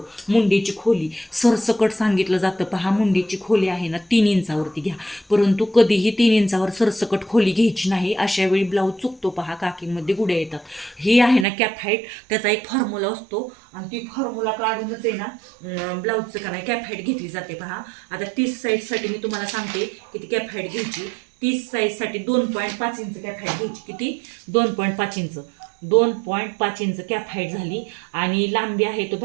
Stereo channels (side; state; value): left; drops out; at 11.5 s